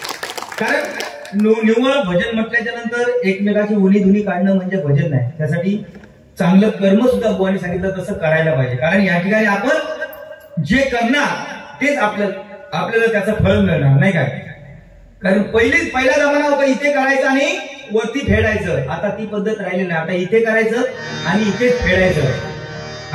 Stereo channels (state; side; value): identical; both; correlation 1.00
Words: कारण निव्वळ भजन म्हटल्याच्या नंतर एकमेकाची उनी धुनी काढणं म्हणजे भजन नाही. त्यासाठी चांगलं कर्म सुद्धा बुवानी सांगितलं तसं करायला पाहिजे. कारण या ठिकाणी आपण जे करणार तेच आपल्याला त्याचं फळ मिळणार नाही काय. कारण पहिला जमाना होता इथे करायचं आणि वरती फेडायचं. आता ती पद्धत राहिली नाही. आता इथे करायचं आणि इथेच फेडायचं.